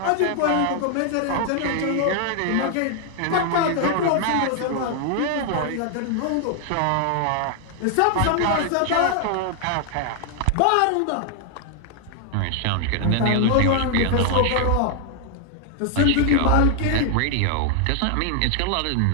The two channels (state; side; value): different; both; correlation 0.00